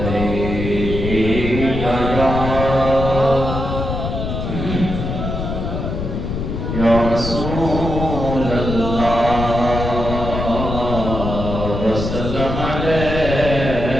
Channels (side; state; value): left; noise; rumble, 4 dB below the sound